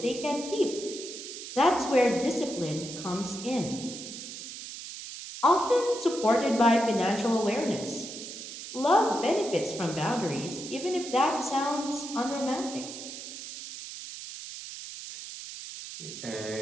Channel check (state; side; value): noise; right; hiss, 10 dB below the sound